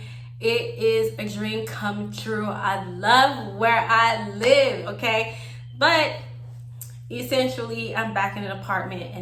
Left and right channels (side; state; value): both; identical; correlation 1.00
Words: it is a dream come true. I love where I live, okay? But essentially, I'm back in an apartment,